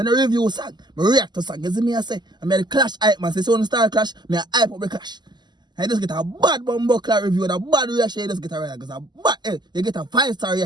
don't review song, I react to song. You see me I say, I made a clash hype man, so when you start clash, I hype up the clash. And you just get a bad Bumbleclad review and a bad reaction, you just get a reaction, because a bad, you get a 5-star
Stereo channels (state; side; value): late; left; 0.21 ms